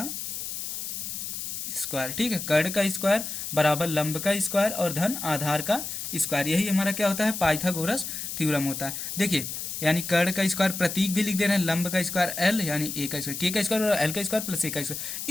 स्क्वायर। ठीक है, कड़ का स्क्वायर बराबर लंब का स्क्वायर और धन आधार का स्क्वायर, यही हमारा क्या होता है, पाइथागोरस थ्योरम होता है। देखिए यानी कड़ का स्क्वायर प्रतीक भी लिख दे रहे हैं, लंब का स्क्वायर एल यानी ए का स्क्वायर, के का स्क्वायर और एल का स्क्वायर प्लस ए का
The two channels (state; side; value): noise; left; hiss, 6 dB below the sound